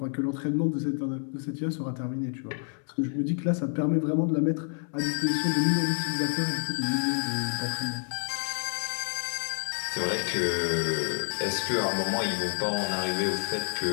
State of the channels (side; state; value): right; silent; 59 dB below the other